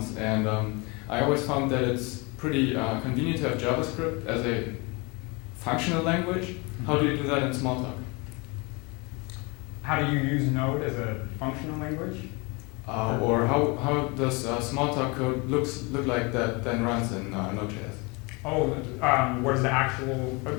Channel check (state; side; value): quieter; right; 28.2 dB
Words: and I always found that it's pretty convenient to have JavaScript as a functional language. How do you do that in Smalltalk? How do you use Node as a functional language? Or how does Smalltalk code look like that then runs in Node.js? Oh, what is the actual,